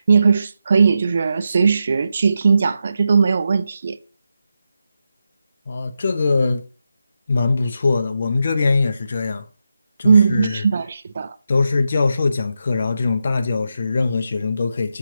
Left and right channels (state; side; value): inverted; both; correlation -0.87